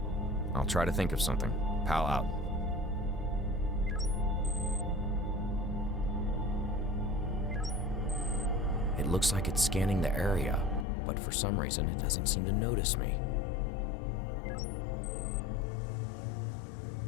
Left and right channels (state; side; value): drops out; right; at 10.9 s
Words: I'll try to think of something. Pal out. It looks like it's scanning the area, but for some reason it doesn't seem to notice me.